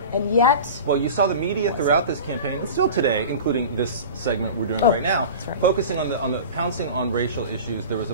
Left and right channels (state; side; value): inverted; both; correlation -0.34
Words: And yet... Well, you saw the media throughout this campaign, and still today, including this segment we're doing right now, focusing on the pouncing on racial issues. There was,